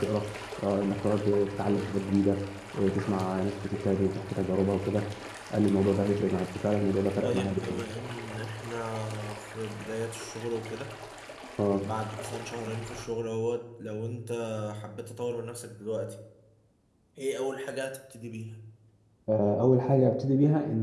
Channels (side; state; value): both; identical; correlation 1.00